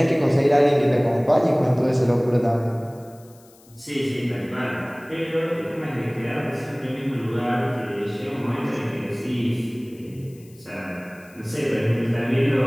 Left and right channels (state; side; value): noise; left; hiss, 27 dB below the sound